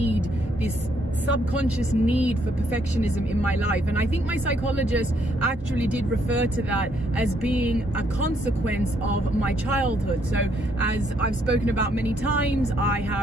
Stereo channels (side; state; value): both; normal; correlation 0.71